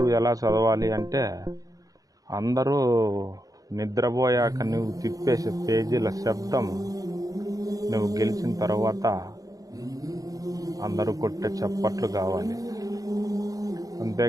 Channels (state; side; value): late; left; 0.17 ms